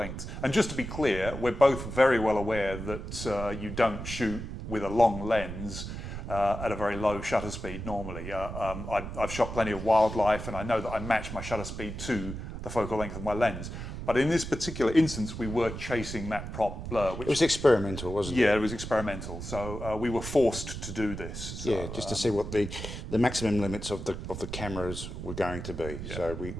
And just to be clear, we're both very well aware that you don't shoot with a long lens at a very low shutter speed normally. I've shot plenty of wildlife and I know that I match my shutter speed to the focal length of my lens. But in this particular instance, we were chasing that prop blur. Which, it was experimental, wasn't it? Yeah, it was experimental. So we were forced to do this. So, yeah, just to see what the maximum limits of the cameras were going to be. So we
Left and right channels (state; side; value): noise; right; rumble, 8 dB below the sound